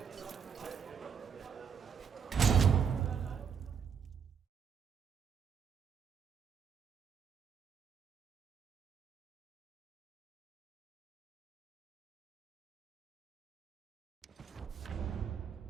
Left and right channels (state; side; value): quieter; left; 7.1 dB